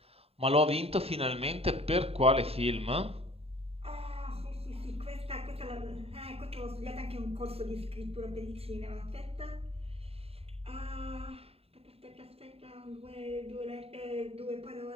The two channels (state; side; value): late; left; 0.29 ms